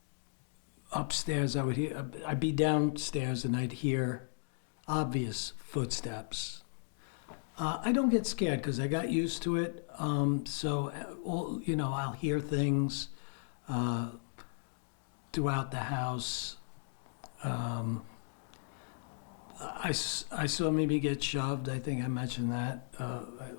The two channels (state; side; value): silent; right; digital silence